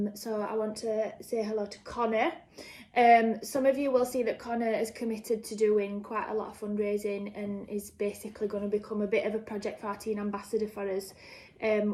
So I want to say hello to Connor. Some of you will see that Connor is committed to doing quite a lot of fundraising and is basically going to become a bit of a Project 14 ambassador for us.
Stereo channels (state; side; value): identical; both; correlation 1.00